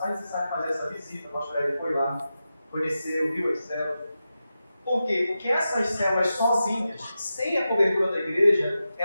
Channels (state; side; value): inverted; both; correlation -0.91